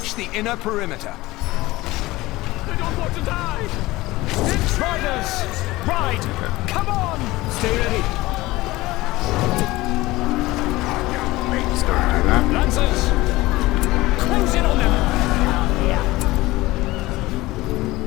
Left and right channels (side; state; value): right; quieter; 19.3 dB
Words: the inner perimeter. I don't want to die! Riders! Ride! Come on! Stay ready! Let's go and do that. Lancers! Close in on them!